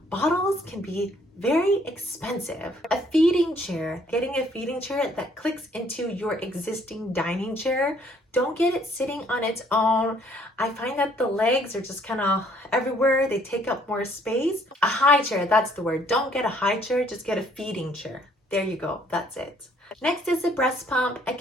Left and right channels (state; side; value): normal; both; correlation 0.63